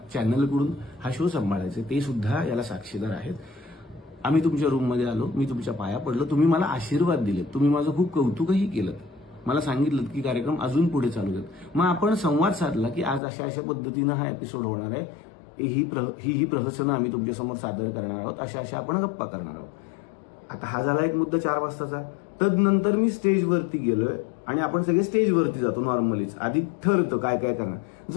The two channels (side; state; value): right; drops out; at 13.2 s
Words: चॅनलकडून हा शो सांभाळायचे ते सुद्धा याला साक्षीदार आहेत. आम्ही तुमच्या रूममध्ये आलो, मी तुमच्या पाया पडलो, तुम्ही मला आशीर्वाद दिलेत, तुम्ही माझं खूप कौतुकही केलं, मला सांगितलं की कार्यक्रम अजून पुढे चालू आहेत. मग आपण संवाद साधला की आज अशा अशा पद्धतीनं हा एपिसोड होणार आहे, ही प्रहसनं आम्ही तुमच्यासमोर सादर करणार आहोत, अशा आपण गप्पा करणार आहोत. आता हा झाला एक मुद्दा 4 वाजताचा. तदनंतर मी स्टेजवरती गेलोय आणि आपण सगळे स्टेजवरती जातो नॉर्मलीच, आधी ठरतं काय काय करणार.